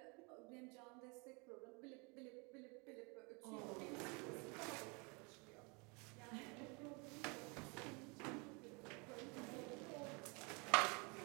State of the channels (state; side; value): quieter; left; 30.9 dB